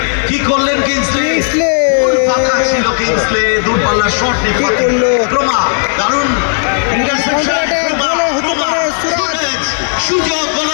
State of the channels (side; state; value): right; silent; digital silence